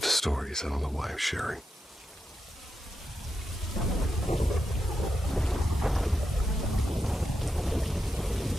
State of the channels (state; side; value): normal; both; correlation 0.87